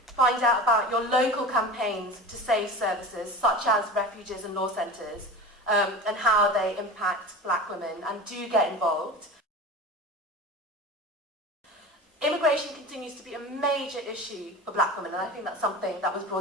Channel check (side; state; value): both; normal; correlation 0.32